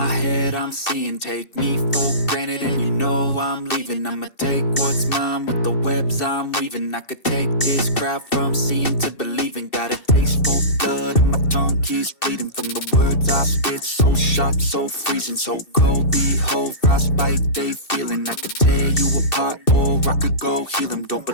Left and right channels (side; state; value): right; late; 2.7 ms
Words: head, I'm seeing. Take me for granted and you know I'm leaving. I'ma take what's mine with the webs I'm weaving. I could take this crowd from seeing to believing. Got a taste for blood and my tongue keeps bleeding from the words I spit. So sharp, so freezing, so cold. Behold, frostbite they feeling. I could tear you apart or I could go heal them. Don't